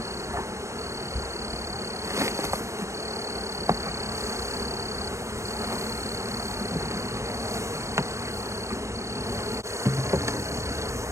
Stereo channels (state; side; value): late; left; 0.14 ms